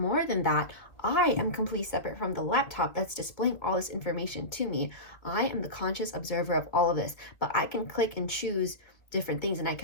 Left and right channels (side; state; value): right; late; 2.0 ms